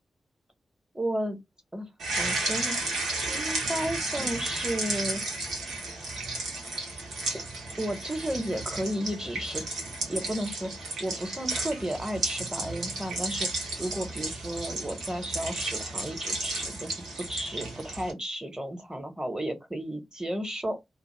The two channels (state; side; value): normal; both; correlation 0.78